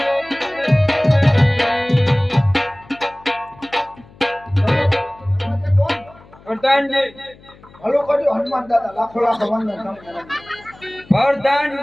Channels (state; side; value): noise; left; hum, 25 dB below the sound